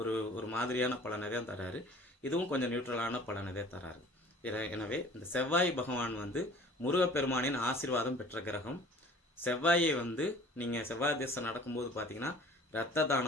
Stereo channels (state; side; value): normal; both; correlation 0.48